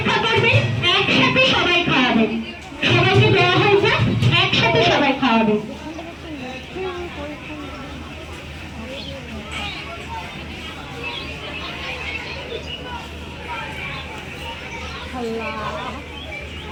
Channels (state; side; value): identical; both; correlation 1.00